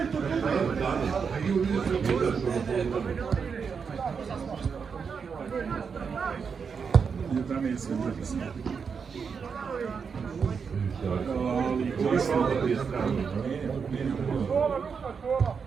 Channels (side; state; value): left; quieter; 6.0 dB